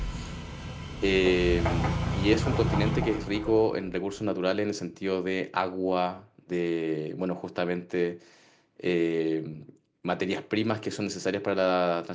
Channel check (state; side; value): identical; both; correlation 1.00